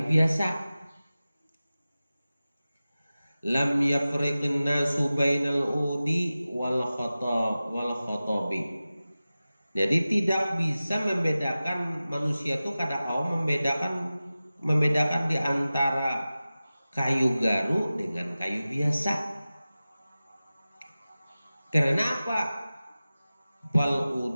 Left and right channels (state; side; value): inverted; both; correlation -0.96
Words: biasa. Lam yafriqun nasu bainal udi wal khotobi. Jadi tidak bisa membedakan manusia itu kada kaum membedakan di antara kayu garu dengan kayu biasa. Karena apa? Fal